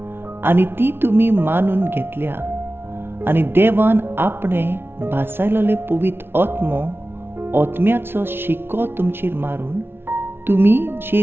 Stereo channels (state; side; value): late; left; 0.11 ms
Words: आनी ती तुमी मानून घेतल्या. आनी देवान आपणें भासायलोले पवित्र आत्म्याचो शिक्को तुमचेर मारून तुमी